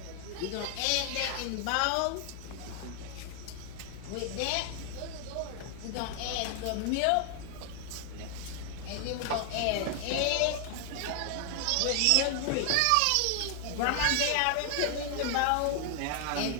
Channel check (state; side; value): different; both; correlation 0.00